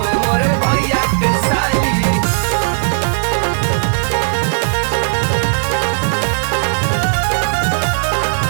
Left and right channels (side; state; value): left; silent; 61 dB below the other